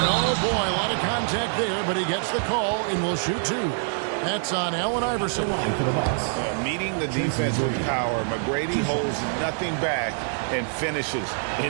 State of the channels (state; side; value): silent; left; digital silence